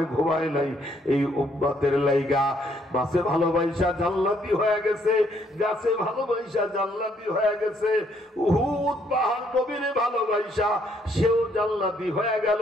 ঘুমায় নাই, এই উম্মতের লাইগা মাছে ভালোবাসা জান্নাতি হয়ে গেছে, গাছে ভালোবাসা জান্নাতি হয়ে গেছে। উহুদ পাহাড় নবীরে ভালোবাসা, সেও জান্নাতি হয়ে গেল।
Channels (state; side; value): normal; both; correlation 0.69